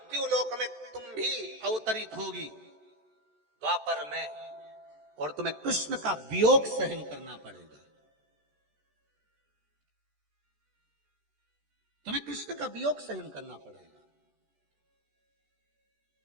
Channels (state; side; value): late; left; 14 ms